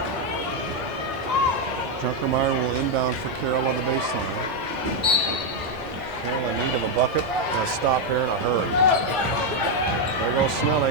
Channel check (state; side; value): normal; both; correlation 0.02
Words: Junkermeyer will inbound for Carroll on the baseline. Carroll in need of a bucket and a stop here in a hurry. There goes